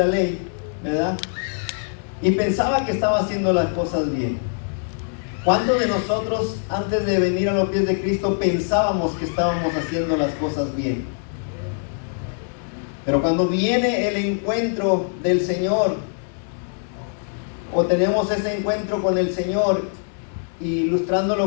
ley, ¿verdad? Y pensaba que estaba haciendo las cosas bien. ¿Cuántos de nosotros antes de venir a los pies de Cristo pensábamos que estábamos haciendo las cosas bien? Pero cuando viene el encuentro del Señor, o tenemos ese encuentro con el Señor,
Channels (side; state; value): right; silent; 64 dB below the other